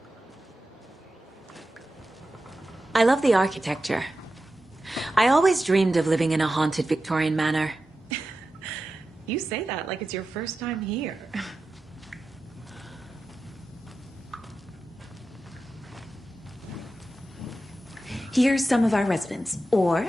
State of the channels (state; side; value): normal; both; correlation 0.92